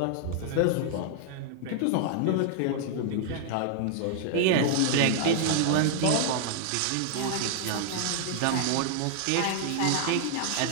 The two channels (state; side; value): different; both; correlation 0.00